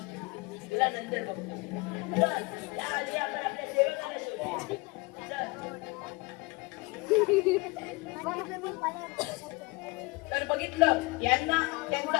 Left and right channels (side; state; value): right; quieter; 25.7 dB